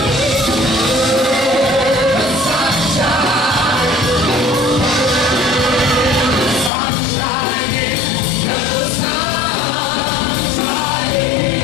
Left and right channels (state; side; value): drops out; right; at 6.7 s